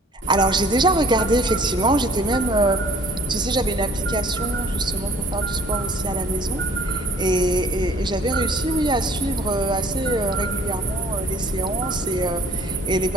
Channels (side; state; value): both; normal; correlation 0.54